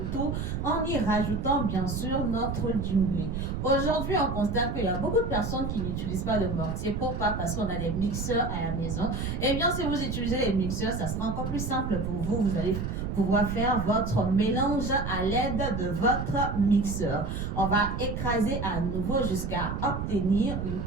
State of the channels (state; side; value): noise; right; rumble, 3 dB below the sound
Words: tout en y rajoutant bien sûr notre djumblé. Aujourd'hui, on constate qu'il y a beaucoup de personnes qui n'utilisent pas de mortier. Pourquoi? Parce qu'on a des mixeurs à la maison. Eh bien, si vous utilisez les mixeurs, ça sera encore plus simple pour vous. Vous allez pouvoir faire votre mélange à l'aide de votre mixeur. On va écraser à nouveau jusqu'à obtenir une